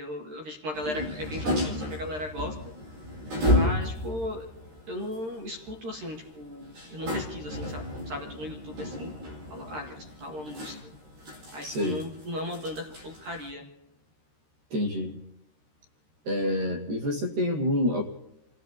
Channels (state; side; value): late; left; 13 ms